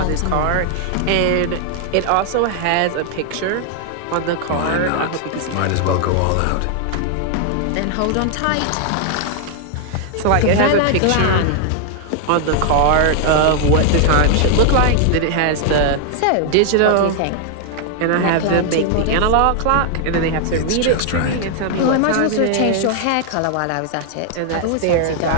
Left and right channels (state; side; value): different; both; correlation 0.00